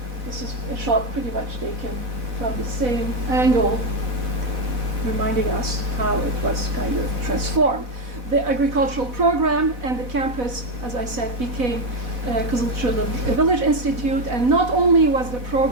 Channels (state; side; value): late; left; 4.1 ms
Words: this is a shot pretty much taken from the same angle, reminding us how it was kind of transformed. The agricultural program and the campus, as I said, became Kızılçullu Village Institute, and not only was the